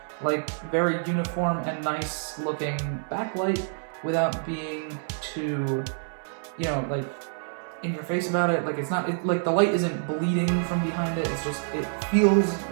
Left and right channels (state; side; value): silent; left; 60 dB below the other